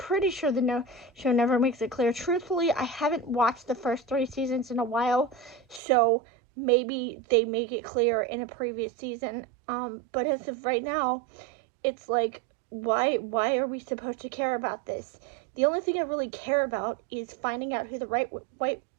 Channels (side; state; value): left; drops out; at 5.8 s